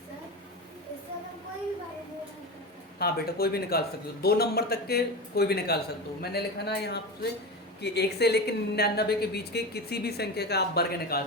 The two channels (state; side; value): normal; both; correlation 0.23